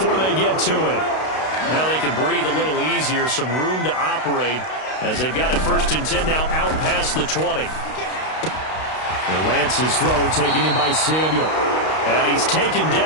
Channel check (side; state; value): right; late; 32 ms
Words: they get to it. Now they can breathe a little easier, some room to operate as they've got it first and 10 now out past the 20. And Lance's throw taken in by Samuel. And he's taken